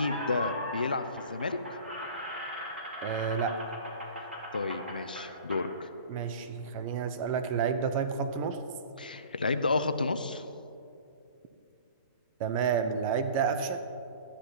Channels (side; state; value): both; inverted; correlation -0.42